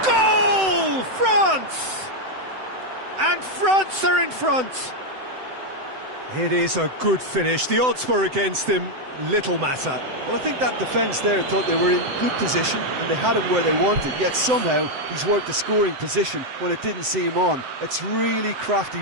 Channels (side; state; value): left; late; 7.8 ms